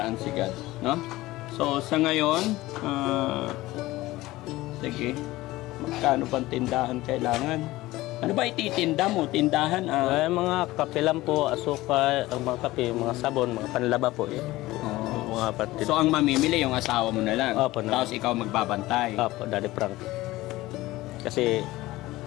si God, no? So, sa ngayon, sige, magkano pang tindahan kailangan? Ano ba ititinda mo? Tindahan? Mga kape lang po, asukal, mga kape, mga sabon, mga panlaba po. Mga patid. So, ang mamimili yung asawa mo na lang? Opo. Tapos ikaw magbabantay? Opo, Daddy Frankie. Kasi,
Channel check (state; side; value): quieter; right; 18.2 dB